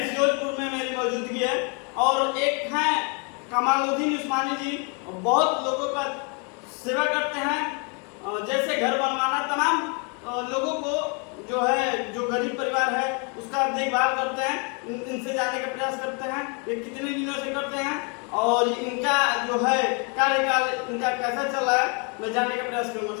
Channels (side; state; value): right; quieter; 35.4 dB